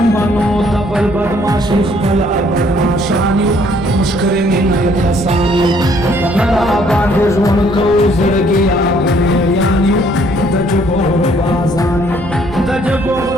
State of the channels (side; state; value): right; noise; rumble, 14 dB below the sound